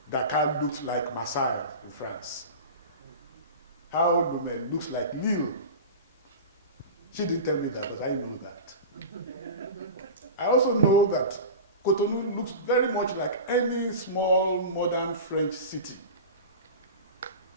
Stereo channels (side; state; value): both; inverted; correlation -0.31